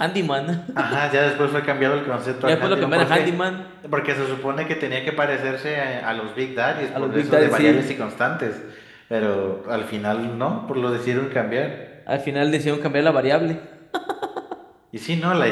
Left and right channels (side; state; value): both; identical; correlation 1.00